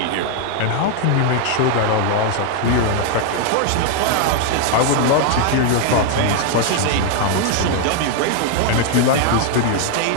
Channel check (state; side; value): different; both; correlation 0.00